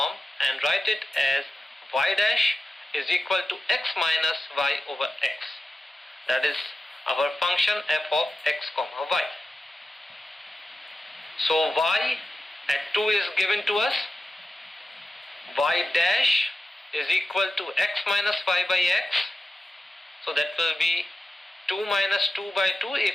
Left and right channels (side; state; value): both; normal; correlation 0.93